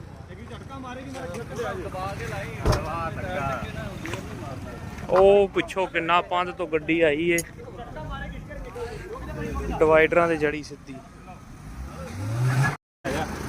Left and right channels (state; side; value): identical; both; correlation 1.00